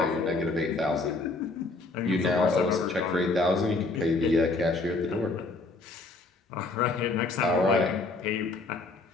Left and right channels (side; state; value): right; quieter; 3.4 dB